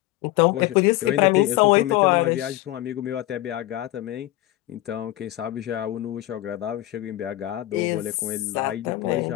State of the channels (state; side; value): quieter; right; 16.2 dB